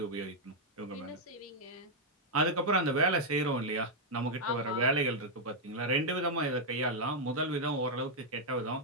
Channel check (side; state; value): both; normal; correlation -0.02